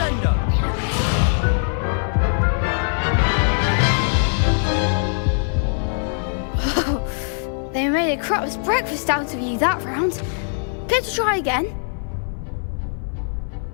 They made a crap's breakfast out of you that round. Care to try again?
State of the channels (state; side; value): silent; right; 65 dB below the other